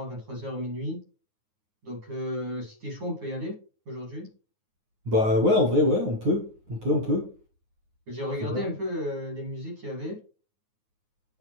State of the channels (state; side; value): late; left; 9.5 ms